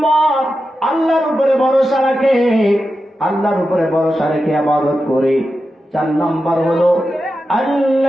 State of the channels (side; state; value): both; normal; correlation 0.90